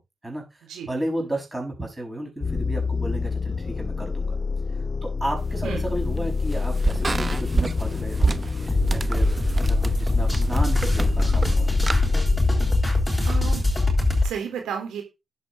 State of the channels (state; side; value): normal; both; correlation 0.92